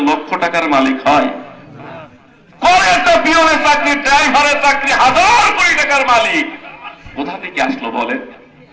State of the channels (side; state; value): both; identical; correlation 1.00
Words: লক্ষ টাকার মালিক হয়? করে একটা পিয়নের চাকরি, ড্রাইভারের চাকরি, 1000 কোটি টাকার মালিক কোথা থেকে আসলো বলেন?